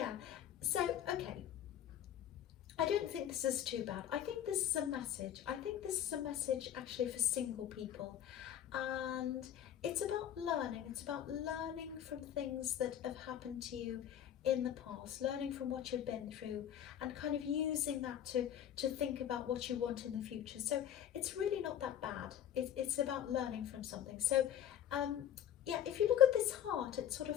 so okay, I don't think this is too bad. I think this is a message. I think this is a message actually for single people, and it's about learning. It's about learning from things that have happened to you in the past, learning from what you've been through, and kind of using that to think about what you want in the future. So it's really not that bad. It's about learning from something. So yeah, if you look at this heart, it's sort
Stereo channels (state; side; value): quieter; right; 10.3 dB